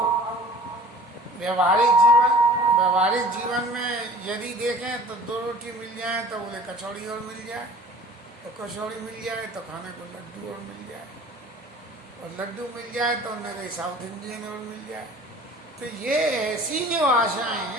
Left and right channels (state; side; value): normal; both; correlation 0.46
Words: व्यवहारिक जीवन में यदि देखें तो 2 रोटी मिल जाए तो बोले कचौड़ी और मिल जाए, तो कचौड़ी मिल जाए तो खाने को लड्डू और मिल जाए, और लड्डू मिल जाए तो उन्हें कहीं साउथ इंडियन और मिल जाए। तो ये ऐसी जो आशाएं